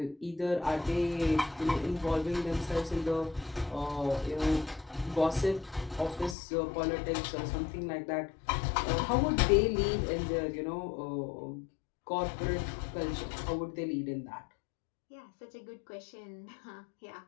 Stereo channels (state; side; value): drops out; right; at 6.4 s